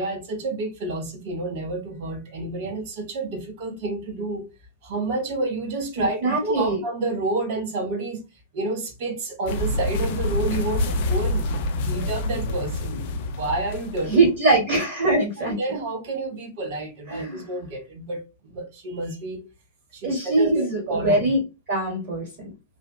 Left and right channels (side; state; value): both; inverted; correlation -0.35